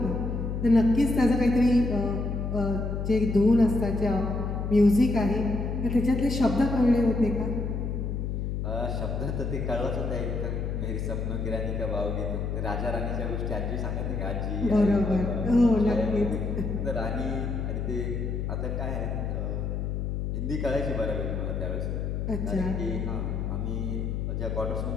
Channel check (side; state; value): left; noise; hum, 2 dB below the sound